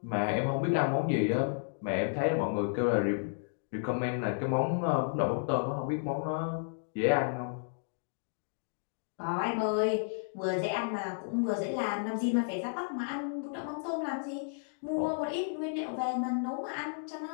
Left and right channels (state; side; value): silent; right; digital silence